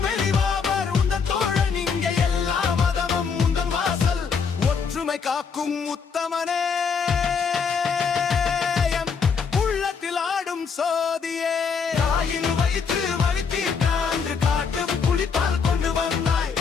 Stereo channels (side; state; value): right; quieter; 5.9 dB